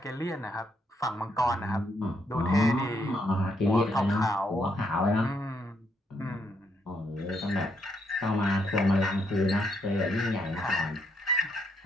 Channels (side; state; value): both; normal; correlation 0.75